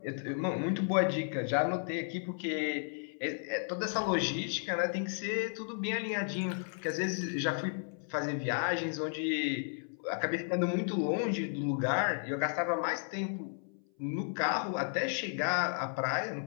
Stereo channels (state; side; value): silent; right; 55 dB below the other